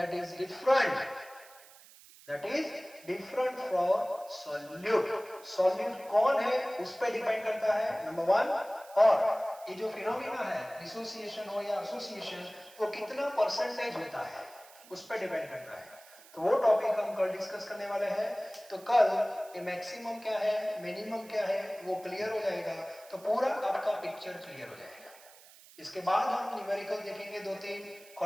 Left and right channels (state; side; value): noise; right; hiss, 22 dB below the sound